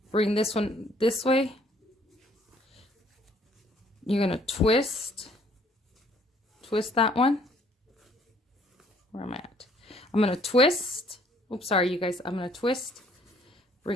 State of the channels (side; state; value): both; normal; correlation 0.62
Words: Bring this one this way. You're gonna twist that one. Where am I at? I'm gonna twist. Oops, sorry you guys. I'm gonna twist,